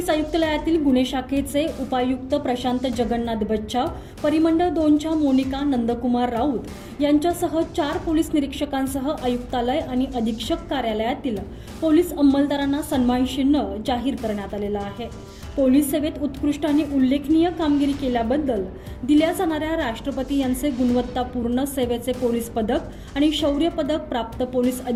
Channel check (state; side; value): identical; both; correlation 1.00